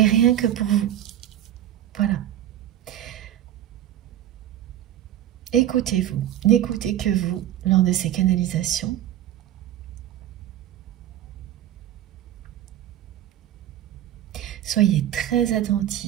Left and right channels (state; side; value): quieter; left; 12.0 dB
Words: rien que pour vous. Voilà. Écoutez-vous, n'écoutez que vous lors de ces canalisations. Soyez très